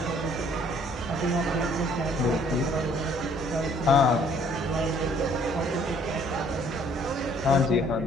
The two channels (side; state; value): both; normal; correlation 0.60